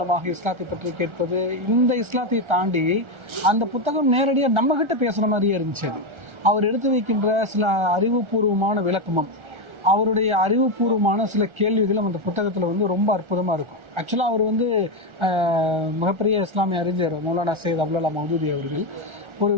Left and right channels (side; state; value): left; late; 1.4 ms